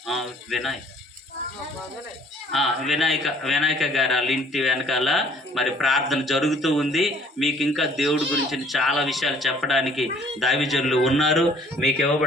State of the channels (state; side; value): normal; both; correlation 0.57